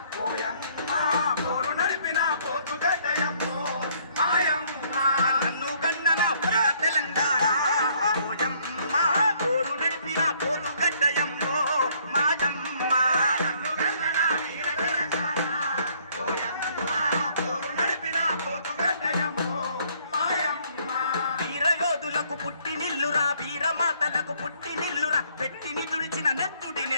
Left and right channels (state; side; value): inverted; both; correlation -0.64